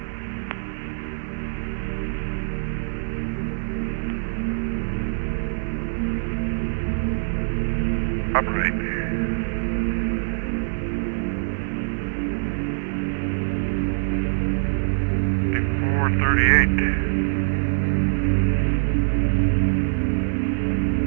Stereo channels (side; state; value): left; silent; digital silence